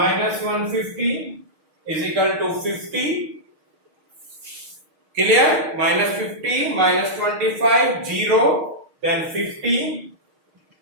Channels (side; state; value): left; late; 6.4 ms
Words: 150 is equal to 50. Clear? Minus 50 minus 25, 0, then 50.